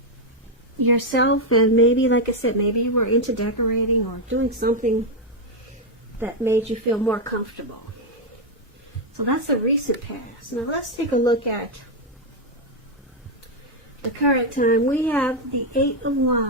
yourself, and maybe, like I said, maybe you were into decorating or doing something that made you feel more comfortable. So that's the recent past. Now let's take a look at the current time. We have the Eight of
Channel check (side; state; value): both; normal; correlation 0.02